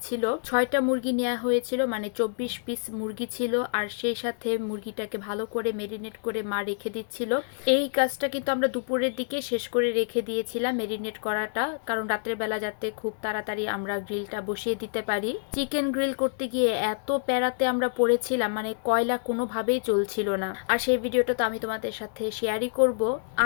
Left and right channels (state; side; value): silent; right; digital silence